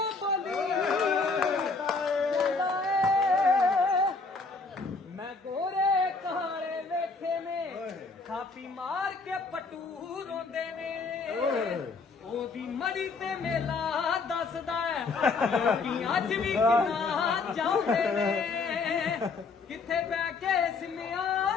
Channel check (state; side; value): quieter; right; 4.1 dB